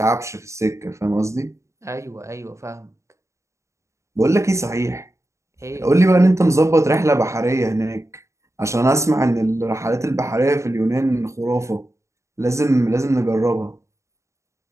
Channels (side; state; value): left; late; 0.14 ms